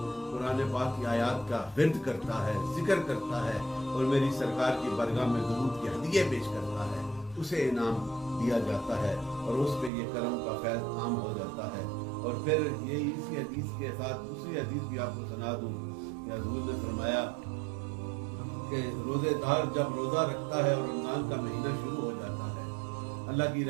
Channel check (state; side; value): drops out; left; at 9.9 s